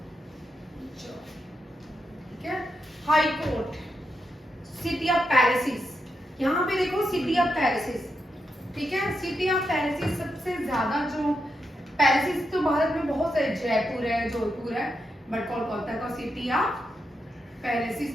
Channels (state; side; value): normal; both; correlation 0.85